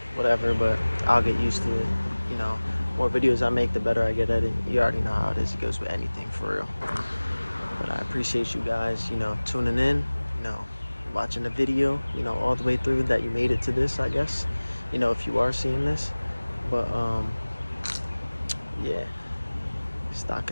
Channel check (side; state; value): both; inverted; correlation -1.00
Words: whatever, but I'll get used to it. You know, more videos I make, the better I get at it. You already know how it is. It goes with anything, for real. But I appreciate you guys, you know, tuning in, you know, watching the video, you know, all the way through, that you made it to this, I guess, you know, if you are seeing this. But yeah, Stock